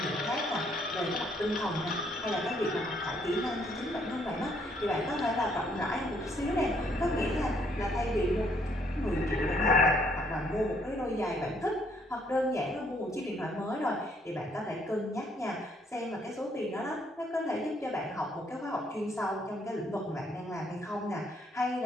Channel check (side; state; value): both; normal; correlation 0.68